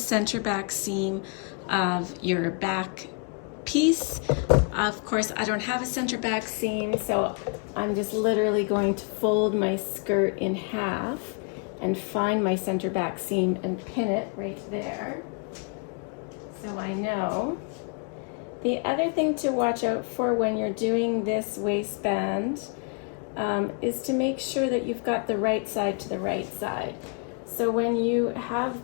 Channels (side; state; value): right; quieter; 37.6 dB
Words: back seam of your back piece. Of course, I don't have a center back seam, so I'm just literally going to fold my skirt in half and find my center back seam and pin it right there, so I know. The other thing to watch out for when you're doing this waistband is to make sure that you've got the right side to the right side. So when you